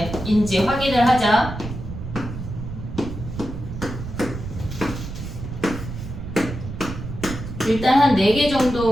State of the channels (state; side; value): noise; right; rumble, 8 dB below the sound